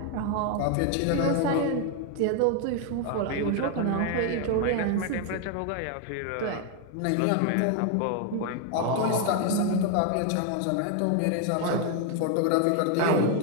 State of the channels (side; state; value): both; different; correlation 0.01